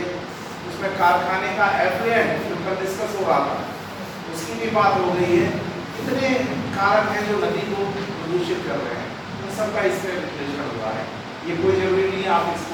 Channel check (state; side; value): identical; both; correlation 1.00